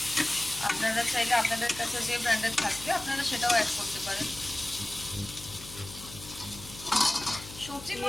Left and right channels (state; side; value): noise; left; hum, 15 dB below the sound